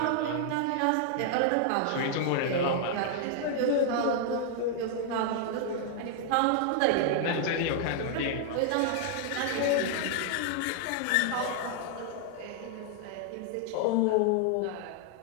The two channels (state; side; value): different; both; correlation 0.00